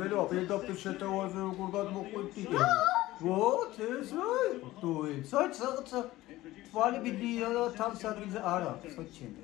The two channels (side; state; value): right; quieter; 17.0 dB